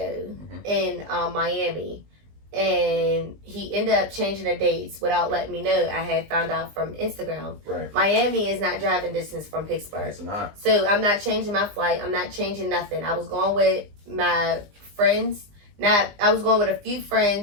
in Miami, and he ended up changing the dates without letting me know. I had found out from Instagram. Right. Miami is not driving distance from Pittsburgh. It's not. So I'm not changing my flight. I'm not changing nothing. I was going with my friends. I was going with a few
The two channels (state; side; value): late; left; 20 ms